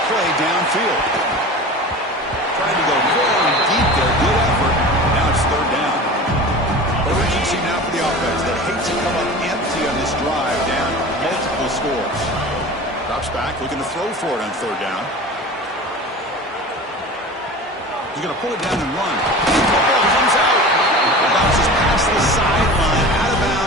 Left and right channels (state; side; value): normal; both; correlation 0.35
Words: play downfield. Trying to go very deep there. Good effort. Now it's 3rd down. Urgency now for the offense that hates to come up empty on this drive, down multiple scores. Drops back, looking to throw for it on 3rd down. He's going to pull it down and run. Football comes out. It bounces past the sideline, out of